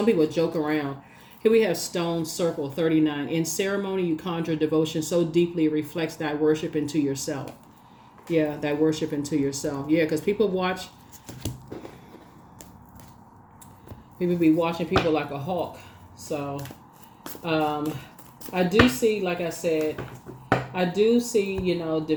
people joke around. Here we have Stone Circle 39. In ceremony, you conjure devotion so deeply it reflects thy worship into yourself. Yeah, thy worship into yourself. Yeah, because people be watching people like a hawk. So I do see, like I said,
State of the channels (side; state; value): both; identical; correlation 1.00